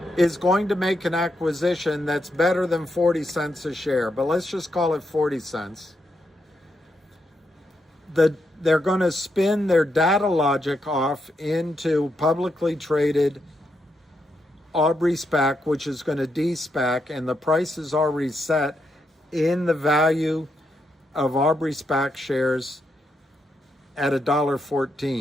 is going to make an acquisition that's better than 40 cents a share, but let's just call it 40 cents. They're going to spin their data logic off into publicly traded Aubrey SPAC, which is going to de-SPAC, and the price is already set in the value of Aubrey SPAC shares at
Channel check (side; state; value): both; normal; correlation 0.82